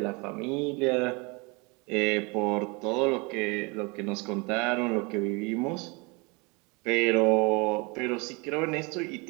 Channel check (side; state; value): left; quieter; 28.7 dB